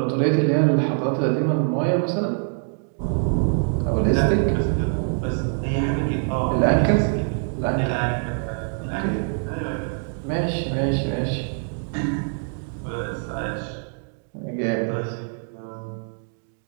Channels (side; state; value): left; silent; 56 dB below the other